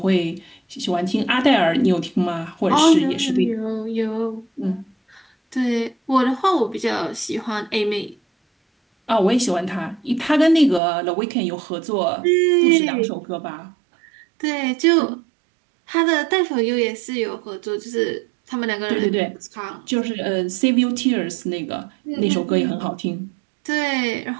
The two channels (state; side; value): drops out; left; at 10.8 s